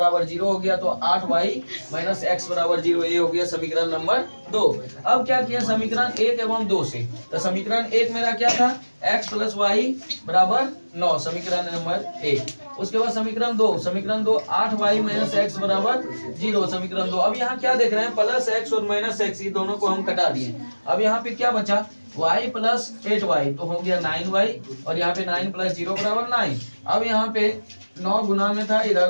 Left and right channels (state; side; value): inverted; both; correlation -1.00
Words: 0 हो गया। तो 8y माइनस x बराबर 0, ये हो गया समीकरण नंबर 2। अब क्या किया, समीकरण 1 एवं 2 से, तो समीकरण 1 मेरा क्या था, x प्लस y बराबर 9, समीकरण नंबर 1। उसके बाद समीकरण 2 8y माइनस x बराबर 0, समीकरण 2। अब यहाँ क्या देख रहे हैं, प्लस x और माइनस x, ये दोनों को हम कटा दिए। अब यहाँ पे क्या बचा, y प्लस 8y, तो हो गया 9y, और यहाँ पे 9 प्लस 0 बराबर 9। अब यहाँ पे 9 गुना में था,